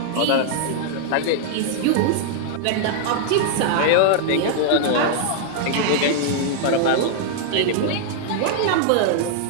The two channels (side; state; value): both; different; correlation -0.01